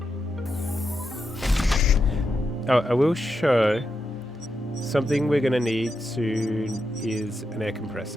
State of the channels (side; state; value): both; normal; correlation 0.86